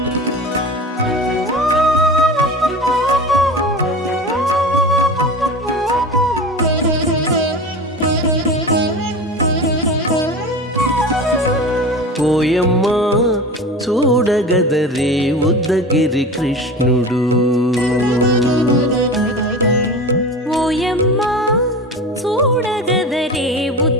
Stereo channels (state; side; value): normal; both; correlation 0.31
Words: ఓయమ్మా చూడగదరే ఉద్దగిరి కృష్ణుడు ఓయమ్మా చూడగదరే